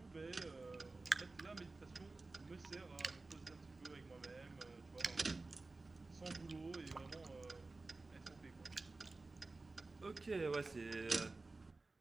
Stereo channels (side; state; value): left; quieter; 3.4 dB